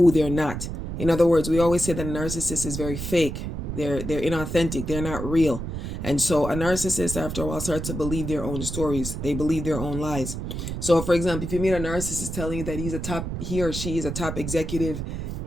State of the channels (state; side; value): noise; right; rumble, 5 dB below the sound